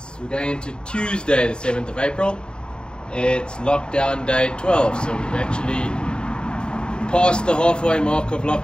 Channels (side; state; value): right; late; 0.050 ms